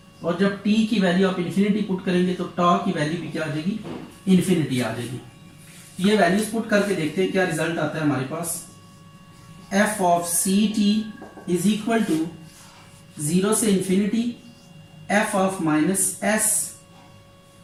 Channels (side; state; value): both; identical; correlation 1.00